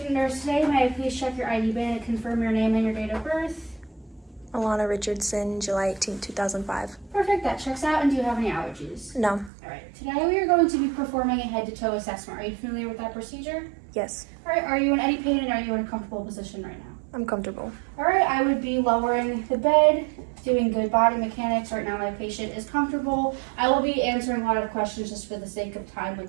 nurse today. May I please check your ID band and confirm your name and your date of birth? Alana Richardson, July 18, 2005. Perfect, that checks out. And do you have any allergies? No. Alright, today we are going to be performing a head-to-toe assessment. Are you familiar with that procedure? Yes. Alright, are you in any pain and are you in a comfortable position right now? I'm comfortable. Alright, I would be lowering the bed, doing good body mechanics. Right now my patient is comfortable. I will be answering a lot of questions just for the sake of time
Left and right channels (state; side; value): drops out; left; at 9.5 s